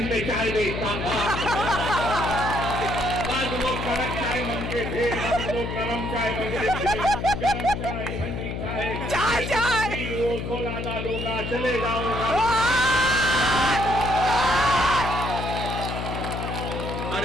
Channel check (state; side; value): noise; left; hum, 4 dB below the sound